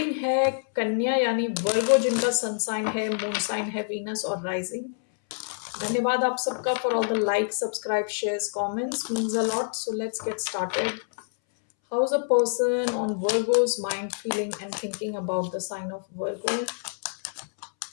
है कन्या यानी वर्गो, जिनका सन साइन है, मून साइन है वीनस और राइजिंग। धन्यवाद आप सबका for all the like, subscribe, shares, comments, means a lot. So let's get started. How is a person on Virgo's mind feeling and thinking about the sign of Virgo?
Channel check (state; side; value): silent; right; 60 dB below the other